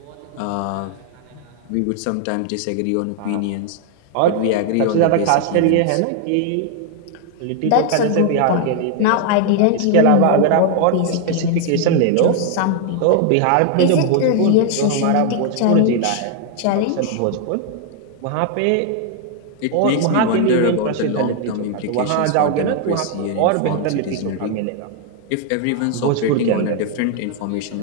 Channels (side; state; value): both; different; correlation 0.00